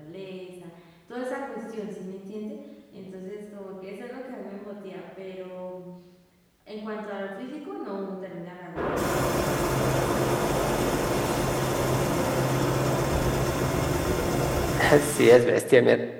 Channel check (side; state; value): both; identical; correlation 1.00